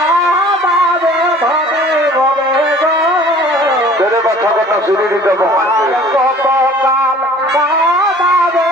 ধরে ধরে গো তেরে কথা কথা শুনে দিতে কত কাল কাঁদাবে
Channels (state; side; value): normal; both; correlation 0.49